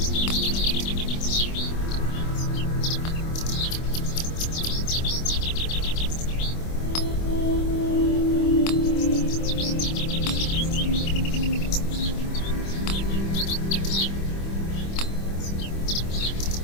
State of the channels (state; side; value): late; right; 25 ms